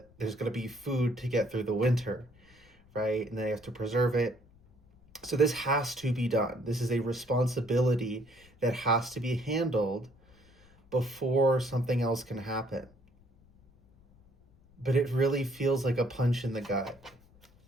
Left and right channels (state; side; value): noise; left; rumble, 28 dB below the sound